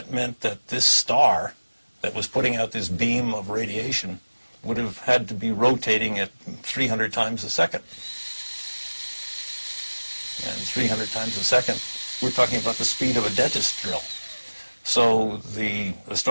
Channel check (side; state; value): both; inverted; correlation -1.00